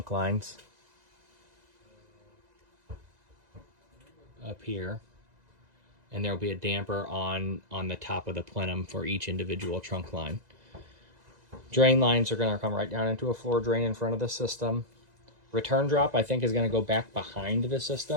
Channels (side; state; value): left; late; 2.0 ms